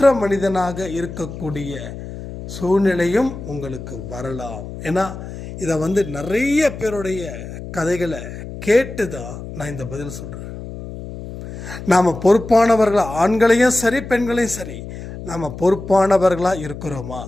மனிதனாக இருக்கக்கூடிய சூழ்நிலையும் உங்களுக்கு வரலாம். ஏன்னா இதை நிறைய பேருடைய கதைகளை கேட்டு தான் நான் இந்த பதில் சொல்கிறேன். நாம் பொறுப்பானவர்களாக, ஆண்களையும் சரி பெண்களையும் சரி, நாம் பொறுப்பானவர்களாக இருக்கிறோமா?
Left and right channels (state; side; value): noise; left; hum, 11 dB below the sound